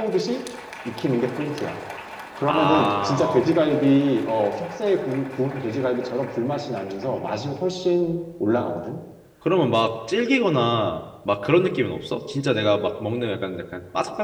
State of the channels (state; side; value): identical; both; correlation 1.00